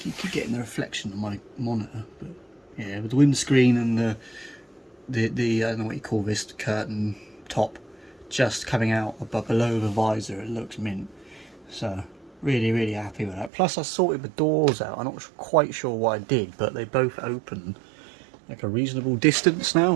getting the reflection on my monitor, but yeah, with the windscreen and the I don't know what you call this, curtain top just coming out above below the visor, it looks mint. So really happy with that. Plus I sorted the doors out. I'm not quite sure what I did, but they both open like a reasonable distance now,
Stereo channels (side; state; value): left; drops out; at 13.5 s